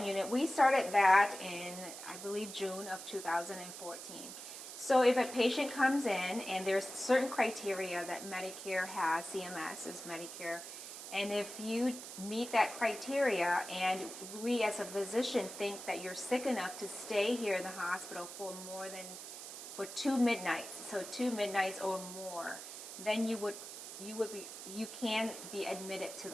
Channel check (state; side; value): noise; right; hiss, 10 dB below the sound